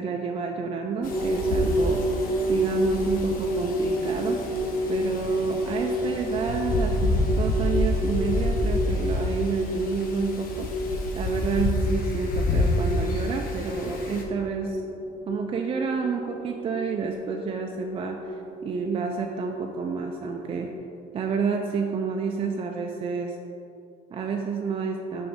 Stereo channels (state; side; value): normal; both; correlation 0.61